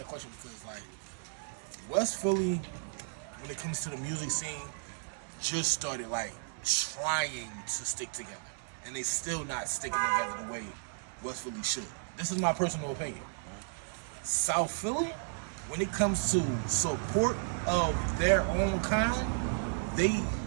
question because like West Philly, when it comes to the music scene, just started like trying to stick together, and they still not sticking together the way West Philly should. This is my personal opinion. South Philly, when it comes to support of their own kind,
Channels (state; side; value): silent; left; digital silence